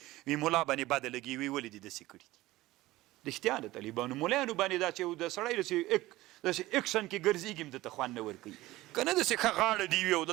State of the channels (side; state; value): left; quieter; 17.8 dB